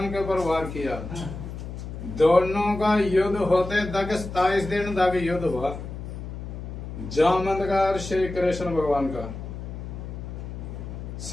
के ऊपर वार किया। दोनों का युद्ध होते तक 27 दिन तक युद्ध हुआ। जामवंत का और श्री कृष्ण भगवान का।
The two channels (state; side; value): noise; left; hum, 9 dB below the sound